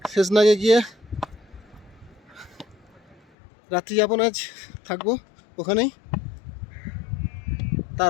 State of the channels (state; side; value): drops out; right; at 3.2 s